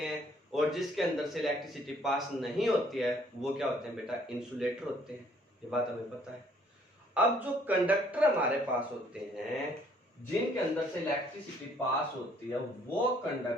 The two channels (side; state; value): both; normal; correlation 0.62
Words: हैं, और जिसके अंदर से इलेक्ट्रिसिटी पास नहीं होती है वो क्या होते हैं बेटा, इंसुलेटर होते हैं। ये बात हमें पता है। अब जो कंडक्टर हमारे पास होते हैं जिनके अंदर से इलेक्ट्रिसिटी पास होती है वो